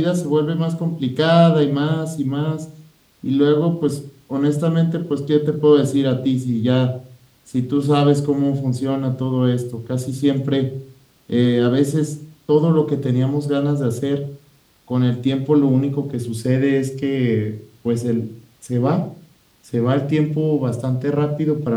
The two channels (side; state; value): both; identical; correlation 1.00